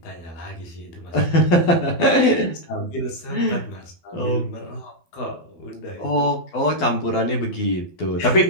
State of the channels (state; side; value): late; right; 12 ms